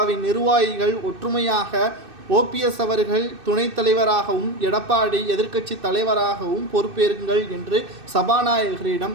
நிர்வாகிகள் ஒற்றுமையாக ஓபிஎஸ் அவர்கள் துணைத் தலைவராகவும் எடப்பாடி எதிர்க்கட்சி தலைவராகவும் பொறுப்பேறுங்கள் என்று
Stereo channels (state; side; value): late; left; 2.6 ms